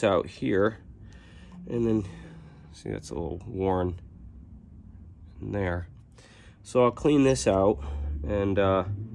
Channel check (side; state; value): both; identical; correlation 1.00